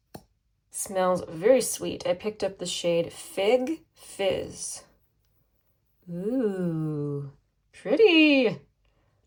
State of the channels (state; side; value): identical; both; correlation 1.00